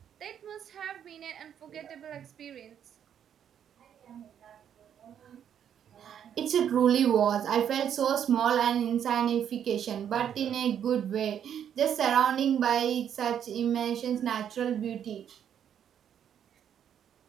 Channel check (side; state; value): left; quieter; 9.1 dB